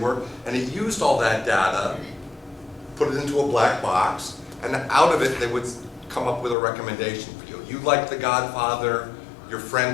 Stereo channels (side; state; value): right; drops out; at 6.6 s